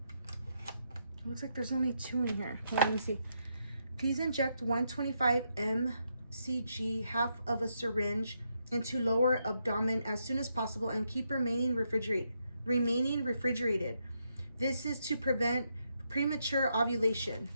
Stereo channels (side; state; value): both; inverted; correlation -0.80